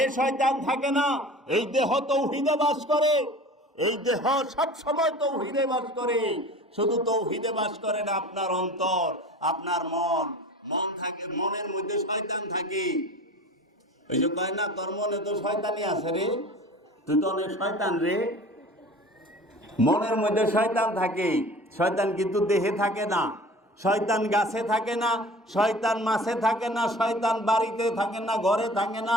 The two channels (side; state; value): both; normal; correlation 0.41